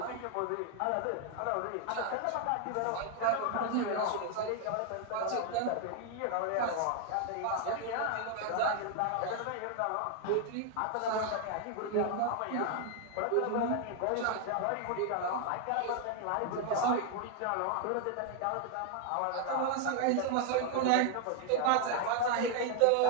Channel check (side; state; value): both; different; correlation 0.00